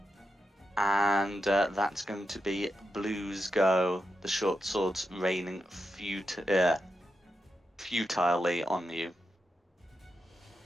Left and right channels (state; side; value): normal; both; correlation 0.87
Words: And that's going to be Blue's go. The short swords raining futilely on you.